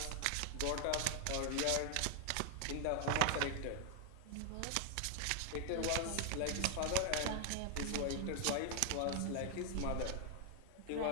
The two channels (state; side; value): different; both; correlation 0.00